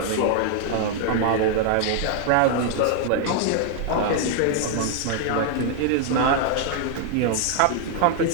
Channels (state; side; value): different; both; correlation 0.00